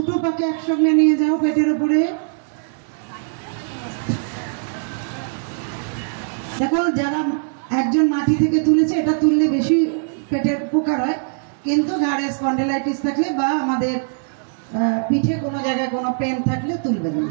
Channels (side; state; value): left; silent; digital silence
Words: পাকে একসঙ্গে নিয়ে যাও পেটের উপরে। দেখো, যারা একজন মাটি থেকে তুলেছে, এটা তুললে বেশি পেটের উপকার হয়, কিন্তু ঘাড়ে স্পন্ডিলাইটিস থাকলে বা আমাদের পিঠে কোনো জায়গায় কোনো পেন থাকলে তুলবেন না,